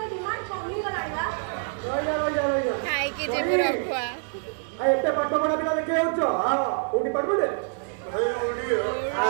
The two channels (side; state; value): left; silent; 61 dB below the other